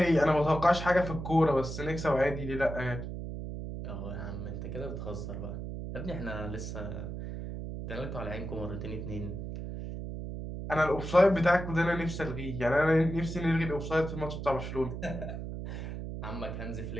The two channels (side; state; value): right; noise; hum, 6 dB below the sound